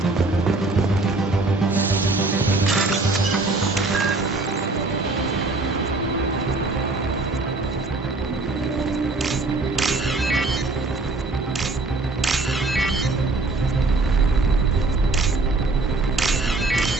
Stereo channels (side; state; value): left; quieter; 3.3 dB